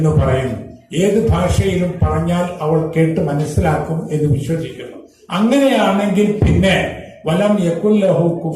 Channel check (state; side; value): identical; both; correlation 1.00